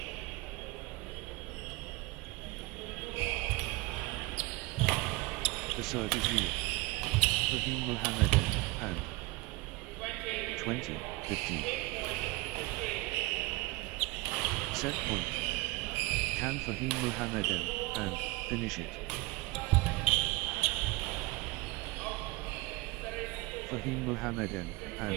The surge is real. Fahim Mohammedan, and 20-15. Set point. Can Fahim Mohammedan, and finish it. Fahim Mohammedan, and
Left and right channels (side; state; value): left; quieter; 21.7 dB